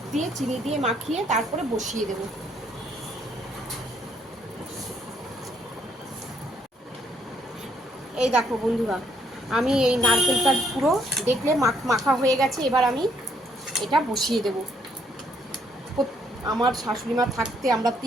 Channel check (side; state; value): both; normal; correlation 0.70